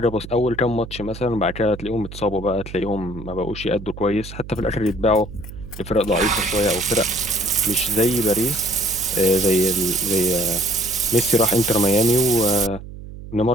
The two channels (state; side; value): noise; right; hum, 13 dB below the sound